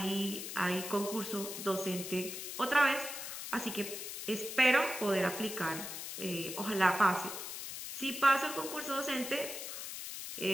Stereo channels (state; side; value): noise; left; hiss, 7 dB below the sound